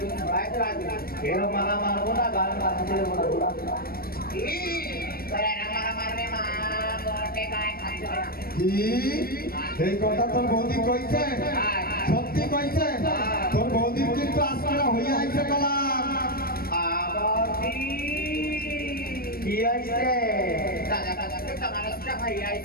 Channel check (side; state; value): right; late; 0.44 ms